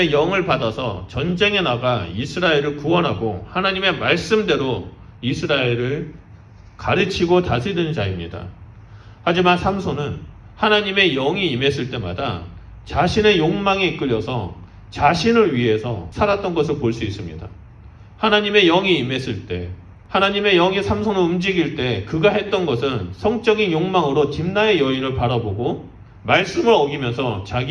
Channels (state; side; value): identical; both; correlation 1.00